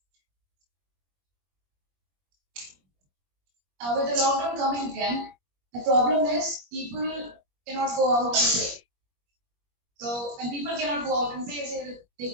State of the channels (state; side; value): late; left; 21 ms